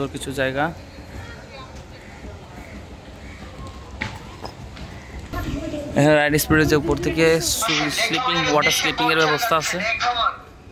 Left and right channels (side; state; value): both; identical; correlation 1.00